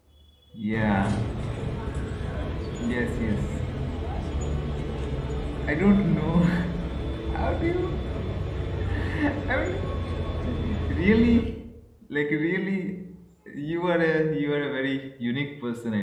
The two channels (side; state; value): both; identical; correlation 1.00